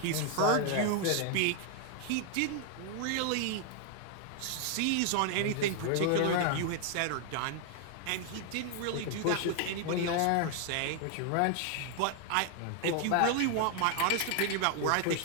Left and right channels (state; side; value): different; both; correlation 0.01